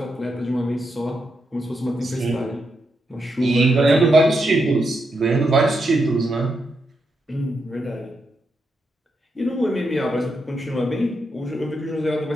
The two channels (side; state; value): both; normal; correlation 0.83